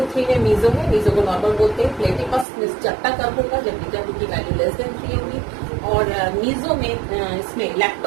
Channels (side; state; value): left; drops out; at 2.5 s